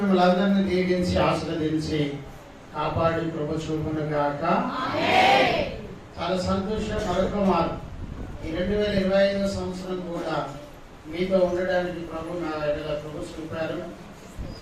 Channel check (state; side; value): identical; both; correlation 1.00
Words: అందరినీ దీవించి ఆశీర్వదించి కాపాడి ప్రభు చూపును గాక. చాలా సంతోషం. మరొక మారు ఈ 2025 సంవత్సరం కూడా మీతో ఉండడానికి ప్రభు నా ఎడల ప్రభు చూపారు.